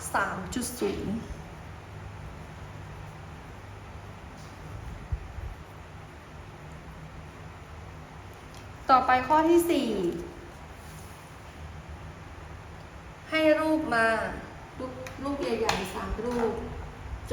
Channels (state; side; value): identical; both; correlation 1.00